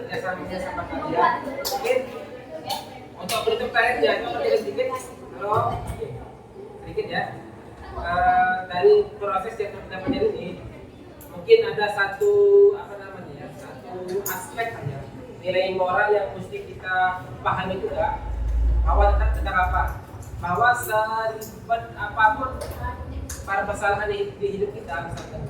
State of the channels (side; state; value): both; identical; correlation 1.00